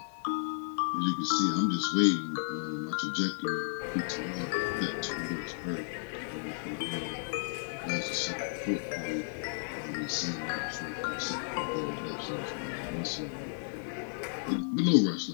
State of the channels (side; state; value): right; silent; 56 dB below the other